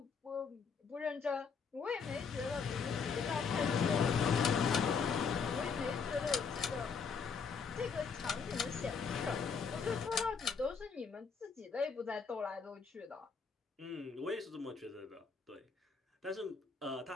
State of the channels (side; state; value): right; quieter; 5.6 dB